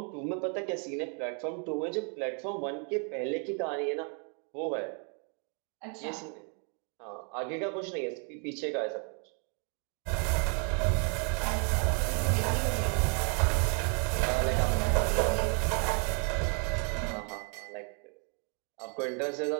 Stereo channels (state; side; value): quieter; left; 39.5 dB